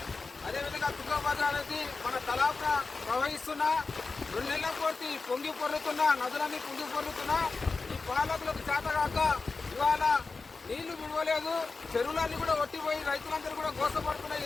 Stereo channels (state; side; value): quieter; right; 4.1 dB